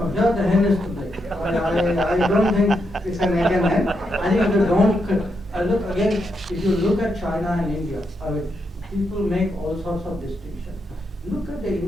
here the hen is to blame. I don't think it's an egg and hen. I think if you don't, look again, if you look at China and India, people make all sorts of distinctions. Look at the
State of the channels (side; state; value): both; normal; correlation 0.82